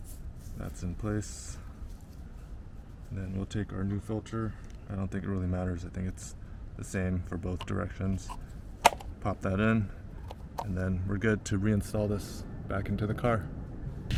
that's in place. And then we'll take our new filter. I don't think it really matters. I think it's the same for both directions. Pop that in, and then we're good to reinstall this back into the car.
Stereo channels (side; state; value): both; identical; correlation 1.00